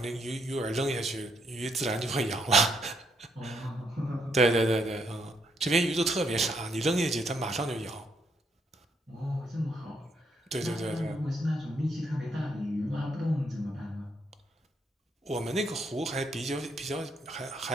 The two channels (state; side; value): normal; both; correlation 0.75